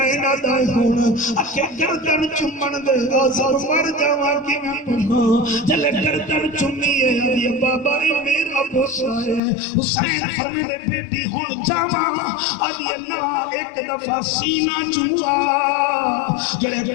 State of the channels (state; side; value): drops out; right; at 9.4 s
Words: دا ہونا اکھے گردن چمن دے آزر مر جاواں کی میں پڑھا جلے گردن چمی ہے ادھے بابا میرا بوسا ہے حسین فرمے دے بیٹی ہون جاواں ادھے اللہ ایک دفعہ سینہ چموا جلے